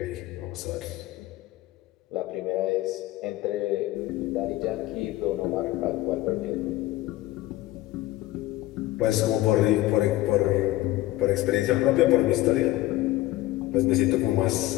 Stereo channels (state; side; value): quieter; right; 16.7 dB